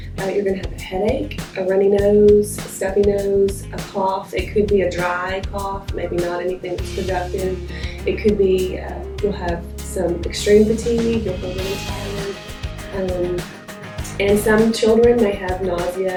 You're going to have a headache, a runny nose, a stuffy nose, a cough. It could be a dry cough, maybe not anything that's productive. It could be, you'll have some extreme fatigue, you'll feel really tired. And some children may have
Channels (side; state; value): both; identical; correlation 1.00